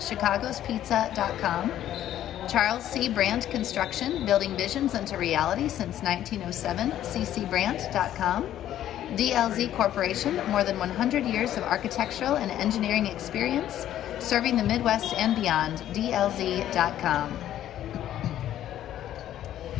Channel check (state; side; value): quieter; right; 11.9 dB